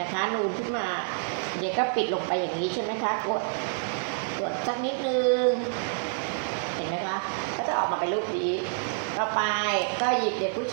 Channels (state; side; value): silent; left; digital silence